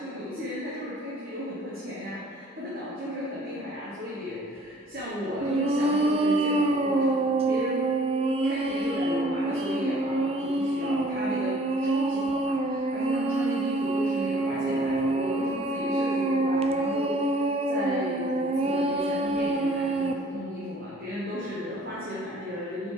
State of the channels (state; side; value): normal; both; correlation 0.55